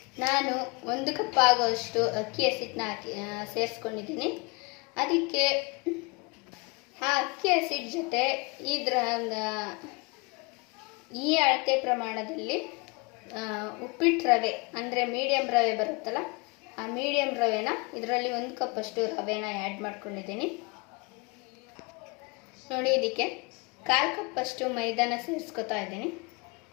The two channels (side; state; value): right; quieter; 28.7 dB